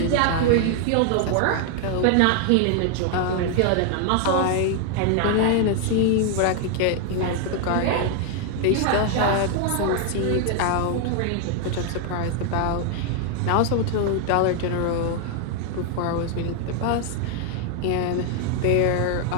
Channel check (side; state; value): both; different; correlation 0.00